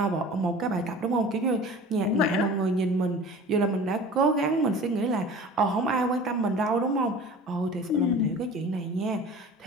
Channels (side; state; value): both; normal; correlation 0.41